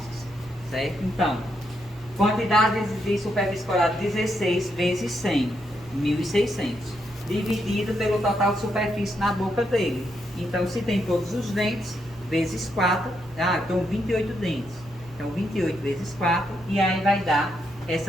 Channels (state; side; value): normal; both; correlation 0.79